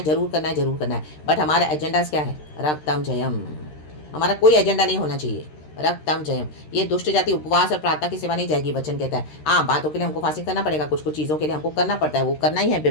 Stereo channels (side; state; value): right; late; 13 ms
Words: जरूर करना है, जरूर करना है, बट हमारा एजेंडाज क्या है? रक्तम जयम। हमारा कोई एजेंडा नहीं होना चाहिए। रक्तम जयम। ये दुष्ट जाति उपवास और प्रार्थना की सेवा नहीं जाएगी, वचन कहता है। हाँ, बातों के लिए हमको फास्टिंग करना पड़ेगा, कुछ कुछ चीज़ों के लिए हमको करना पड़ता है, वो करना ही है